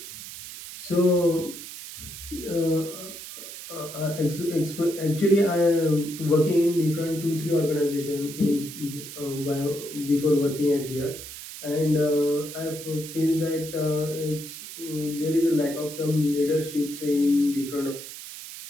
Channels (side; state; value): right; noise; hiss, 12 dB below the sound